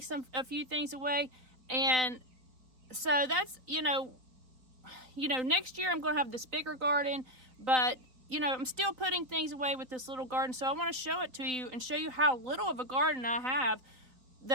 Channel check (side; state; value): left; late; 4.1 ms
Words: a few things away, and so that's, next year I'm going to have this bigger garden, but I'm still putting things away with this little garden. So I want to show it to you and show you how little of a garden I have,